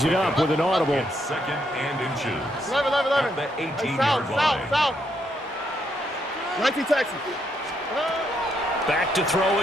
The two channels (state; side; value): normal; both; correlation 0.76